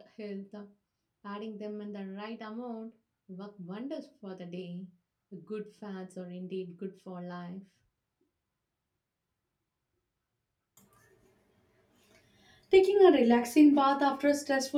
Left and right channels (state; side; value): identical; both; correlation 1.00